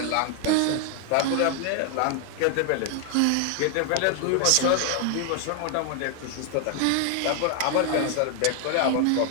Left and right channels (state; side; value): different; both; correlation 0.00